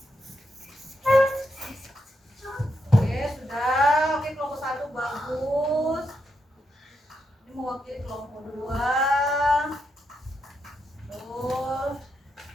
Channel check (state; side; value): normal; both; correlation 0.82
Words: Oke, sudah. Oke, kelompok 1 bagus. Ini mewakili kelompok 2. Terus